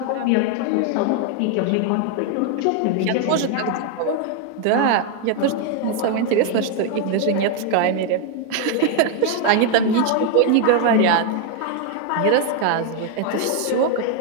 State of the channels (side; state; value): both; different; correlation 0.01